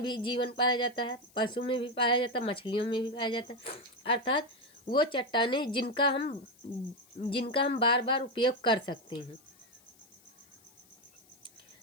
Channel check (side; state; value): left; noise; hiss, 29 dB below the sound